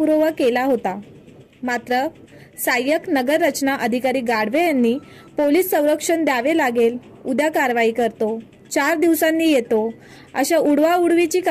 केला होता। मात्र सहाय्यक नगर रचना अधिकारी गाडवे यांनी पोलीस संरक्षण द्यावे लागेल, उद्या कारवाई करतो, 4 दिवसांनी येतो, अशा उडवाउडवीची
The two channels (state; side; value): identical; both; correlation 1.00